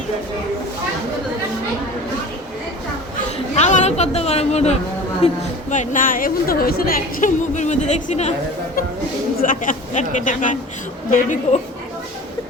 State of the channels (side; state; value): both; normal; correlation 0.39